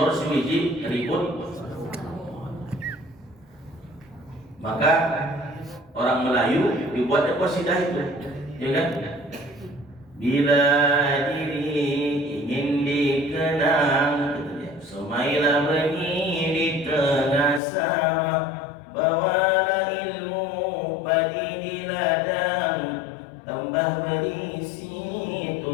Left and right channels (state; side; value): drops out; right; at 17.6 s